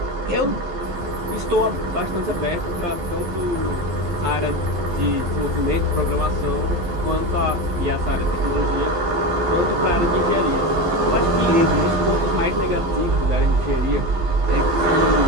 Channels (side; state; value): left; late; 12 ms